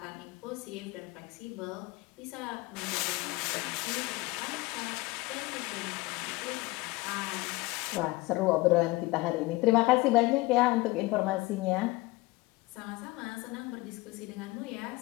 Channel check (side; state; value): right; quieter; 21.8 dB